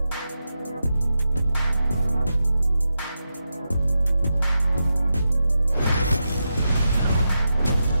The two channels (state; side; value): inverted; both; correlation -0.88